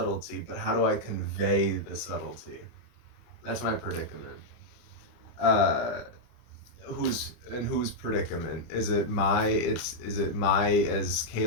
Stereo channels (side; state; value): right; late; 25 ms